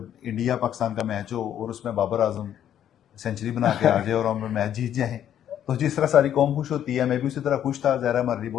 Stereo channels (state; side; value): quieter; right; 10.3 dB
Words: इंडिया पाकिस्तान का मैच हो और उसमें बाबर आजम सेंचुरी बना के आ जाए और हम मैच जीत जाएं, तो जिस तरह सारी कौम खुश होती है, मैं भी उसी तरह खुश था। ज़ाहिर हमारे लिए